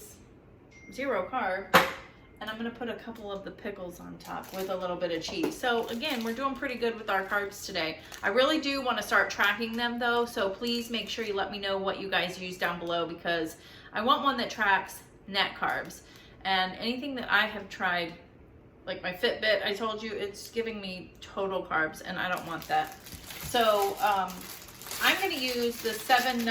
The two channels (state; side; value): identical; both; correlation 1.00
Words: 0 carb, and I'm gonna put a couple of the pickles on top with a little bit of cheese. So again, we're doing pretty good with our carbs today. I really do wanna start tracking them though, so please make sure you let me know what you guys use down below, because I want one that tracks net carbs. And anything that I have tried, like my Fitbit, I told you, it's giving me total carbs, and I don't want that. So I'm gonna use the 7